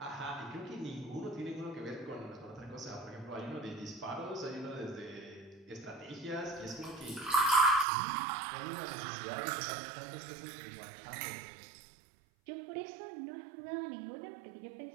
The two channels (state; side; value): drops out; left; at 7.9 s